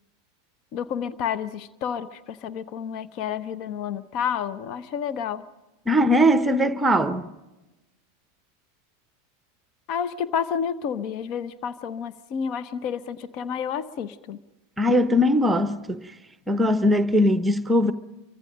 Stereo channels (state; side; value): normal; both; correlation 0.59